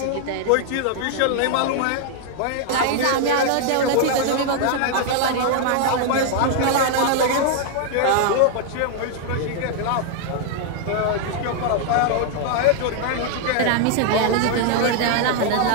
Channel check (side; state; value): both; different; correlation 0.00